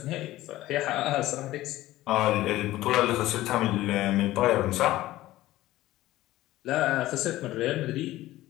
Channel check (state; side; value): quieter; right; 16.1 dB